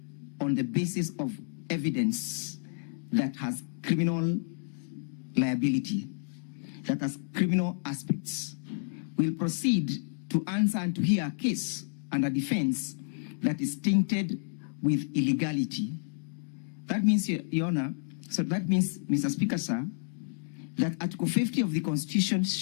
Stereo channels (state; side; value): silent; right; digital silence